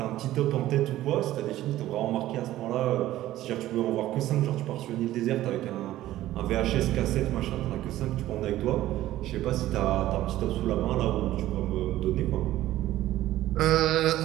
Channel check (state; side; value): quieter; left; 14.6 dB